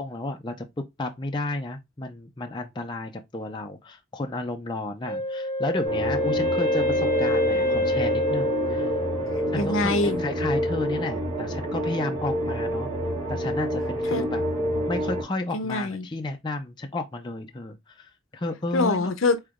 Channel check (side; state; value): both; normal; correlation 0.41